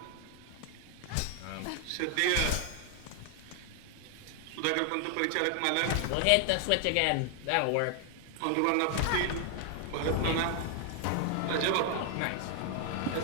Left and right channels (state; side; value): different; both; correlation 0.00